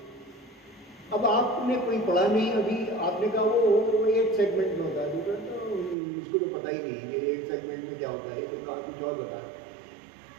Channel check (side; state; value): left; drops out; at 6.0 s